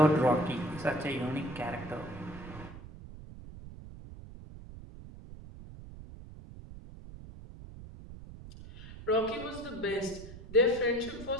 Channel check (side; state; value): right; noise; rumble, 15 dB below the sound